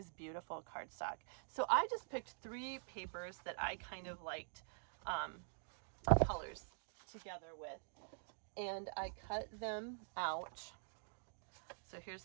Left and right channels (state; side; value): silent; left; digital silence